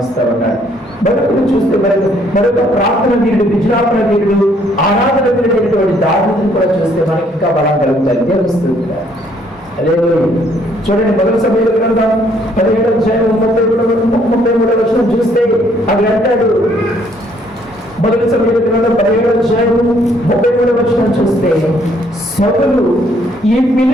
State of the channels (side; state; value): both; normal; correlation 0.66